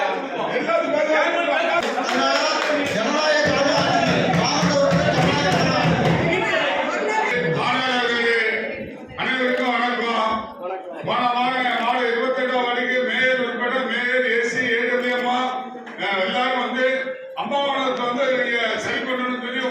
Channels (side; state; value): both; identical; correlation 1.00